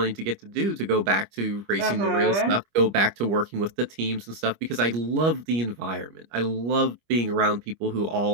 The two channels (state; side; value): late; left; 25 ms